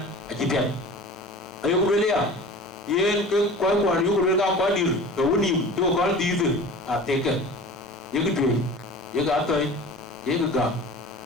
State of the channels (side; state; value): both; normal; correlation 0.39